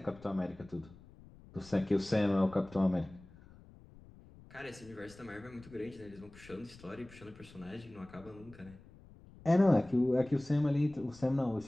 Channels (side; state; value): left; noise; rumble, 21 dB below the sound